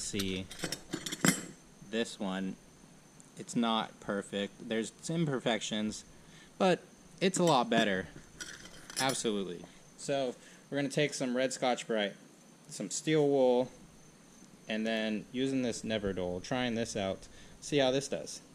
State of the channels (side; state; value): both; identical; correlation 1.00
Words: this one, it's not perfect. There's some imperfections, but it's a lot better. Absolutely. So we're going to take some red Scotch-Brite, some steel wool, and then using this Neverdole, trying this out, see how this does.